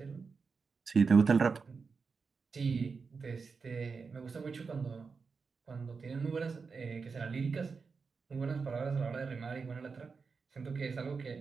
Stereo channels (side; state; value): left; quieter; 5.0 dB